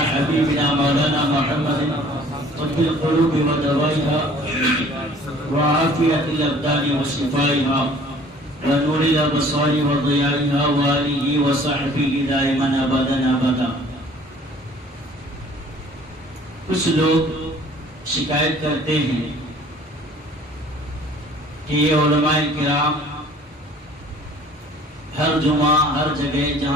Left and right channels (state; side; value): normal; both; correlation 0.52